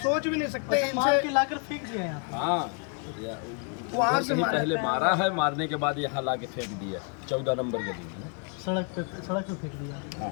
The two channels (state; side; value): quieter; right; 38.6 dB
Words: भी नहीं सकते। इनसे लाकर फेंक दिया यहाँ। हाँ, वहाँ से पहले मारा है, मारने के बाद यहाँ ला के फेंक दिया 14 नंबर गली में, सड़क पे फेंक दिया।